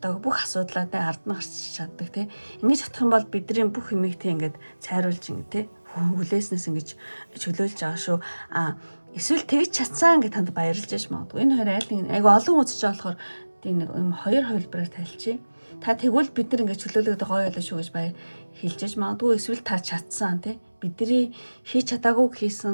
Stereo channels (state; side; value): inverted; both; correlation -1.00